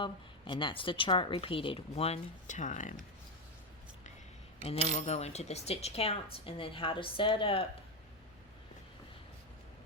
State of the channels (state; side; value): normal; both; correlation 0.09